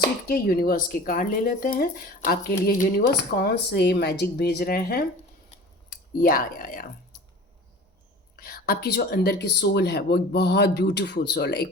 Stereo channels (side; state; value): both; normal; correlation 0.40